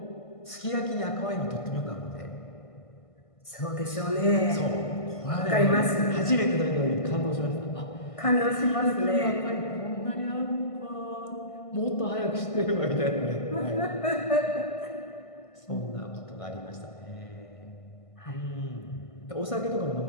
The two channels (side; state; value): right; late; 1.5 ms